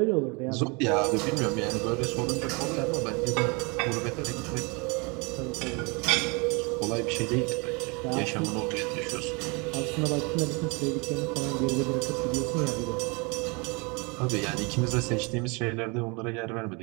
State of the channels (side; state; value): left; quieter; 29.7 dB